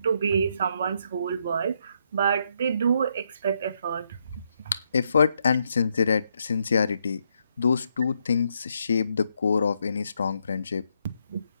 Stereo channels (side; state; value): both; inverted; correlation -0.77